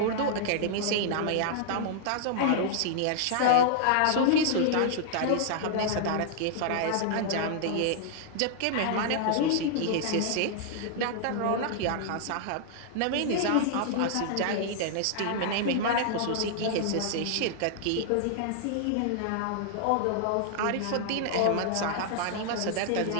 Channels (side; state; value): both; different; correlation -0.01